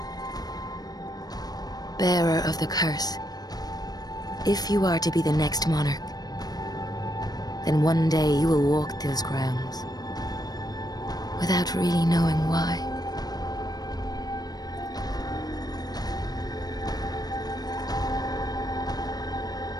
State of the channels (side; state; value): right; late; 0.19 ms